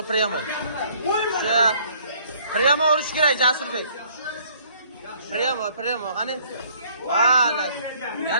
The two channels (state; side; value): inverted; both; correlation -0.60